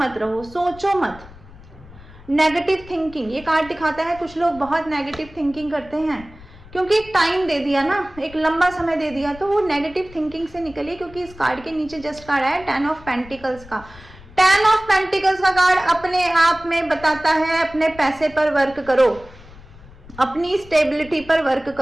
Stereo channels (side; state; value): left; noise; rumble, 20 dB below the sound